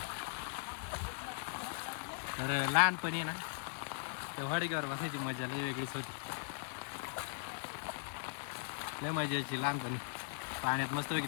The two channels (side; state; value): right; silent; digital silence